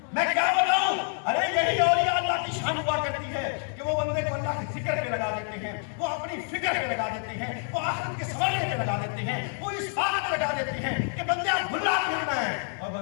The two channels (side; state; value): right; silent; 55 dB below the other